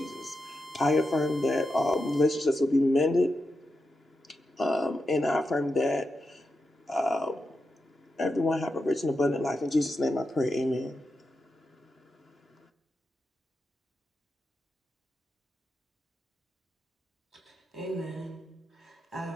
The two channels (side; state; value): both; normal; correlation 0.88